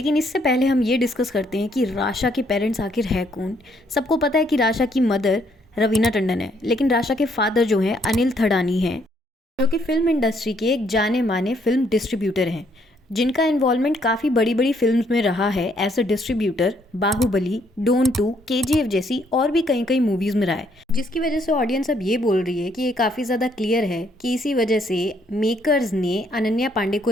इससे पहले हम ये डिस्कस करते हैं कि राशा के पेरेंट्स आखिर है कौन। सबको पता है कि राशा की मदर रवीना टंडन है, लेकिन राशा के फादर जो हैं अनिल थडानी हैं, जो कि फिल्म इंडस्ट्री के एक जाने माने फिल्म डिस्ट्रीब्यूटर हैं, जिनका इन्वॉल्वमेंट काफ़ी बड़ी बड़ी फिल्म्स में रहा है as a distributor. Baahubali, Don 2, KGF जैसी और भी कई मूवीज़ में रहा है, जिसकी वजह से ऑडियंस अब ये बोल रही है कि ये काफ़ी ज़्यादा क्लियर है कि इसी वजह से मेकर्स ने अनन्या पांडे को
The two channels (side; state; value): both; normal; correlation 0.69